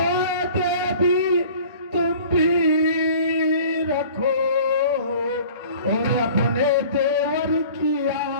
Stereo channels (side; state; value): both; inverted; correlation -0.47